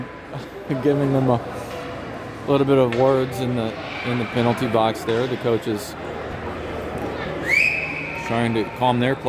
giving them a little bit of words in the penalty box there. The coaches trying to calm their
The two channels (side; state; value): both; identical; correlation 1.00